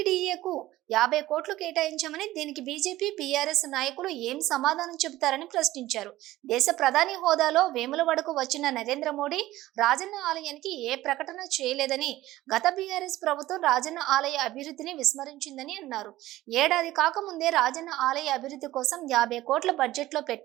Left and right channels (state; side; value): quieter; left; 16.1 dB